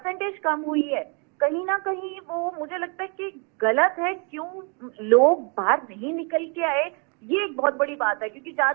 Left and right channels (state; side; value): quieter; left; 36.0 dB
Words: कम हुई है कहीं ना कहीं वो मुझे लगता है कि गलत है। क्यों लोग बाहर नहीं निकल के आए, ये एक बहुत बड़ी बात है। क्योंकि जहां